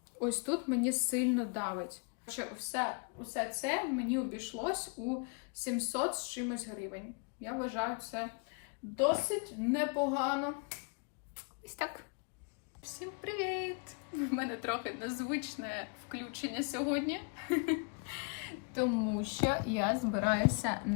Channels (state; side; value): quieter; right; 37.3 dB